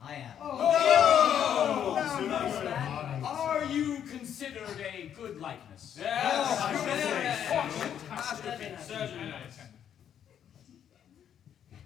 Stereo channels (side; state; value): right; quieter; 9.3 dB